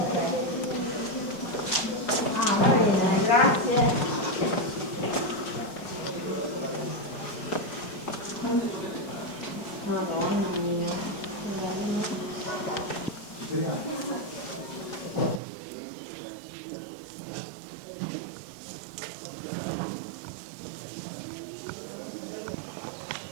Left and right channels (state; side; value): drops out; left; at 15.4 s